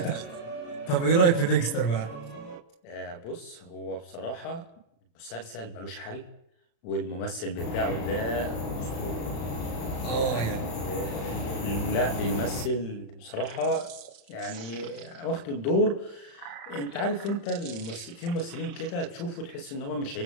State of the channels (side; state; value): right; late; 35 ms